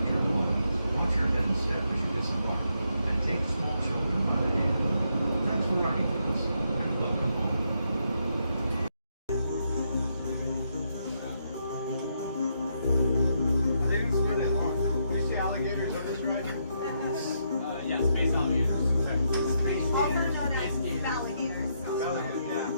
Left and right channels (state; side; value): inverted; both; correlation -0.78